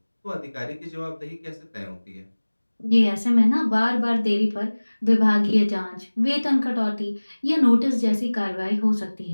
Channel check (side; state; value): both; inverted; correlation -1.00